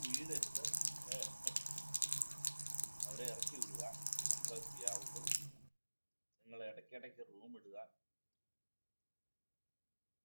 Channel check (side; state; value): both; inverted; correlation -1.00